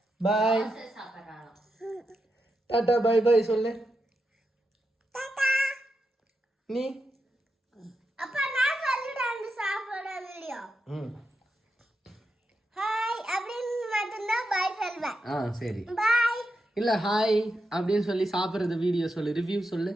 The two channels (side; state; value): both; normal; correlation 0.86